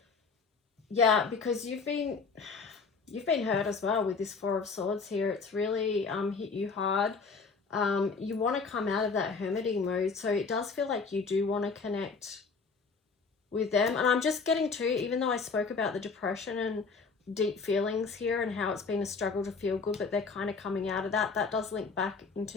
Yeah, because you've been hurt as well with this Four of Swords here. It's really hit you hard. You want to come out of that hermiting mode. So it does feel like you do want to connect with them. And I'm just getting to, even though I spoke about the depression and deep feelings here and how it's been a struggle to feel good, but they're kind of coming out of that. That does link back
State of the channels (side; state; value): right; quieter; 4.8 dB